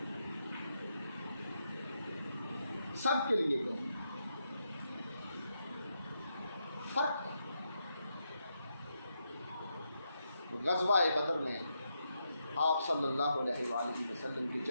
سب کے لیے کہیں فرق ہے. غزوہ بدر میں آپ صلی اللہ علیہ وآلہ وسلم کے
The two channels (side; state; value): both; inverted; correlation -0.83